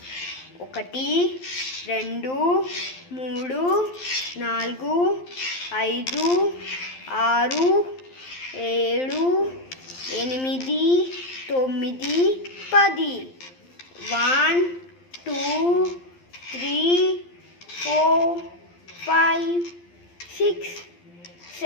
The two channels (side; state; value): right; late; 12 ms